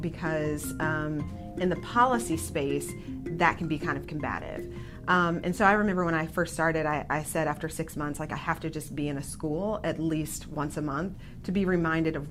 in the policy space, that can be kind of combative. And so I remember when I first started, I said after 6 months, I have to just be in a school at least once a month to be reminded of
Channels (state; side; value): identical; both; correlation 1.00